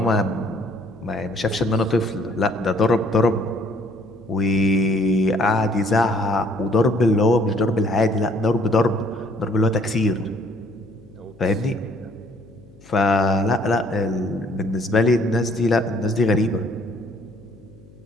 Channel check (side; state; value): left; noise; hum, 24 dB below the sound